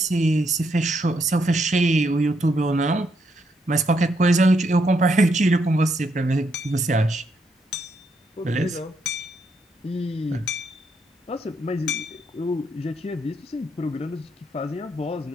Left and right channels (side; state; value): both; normal; correlation 0.76